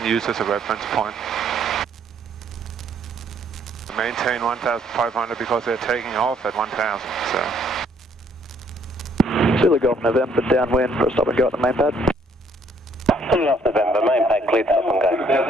use as a reference point. Maintain 1,500 because they're taking off at 1,000, so. Zulu Golf November, downwind for a stop and go at the main pad. Zulu Golf November, main pad cleared, stop and go.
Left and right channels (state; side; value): normal; both; correlation 0.65